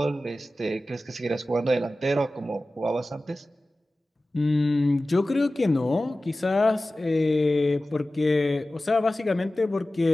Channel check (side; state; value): both; normal; correlation 0.96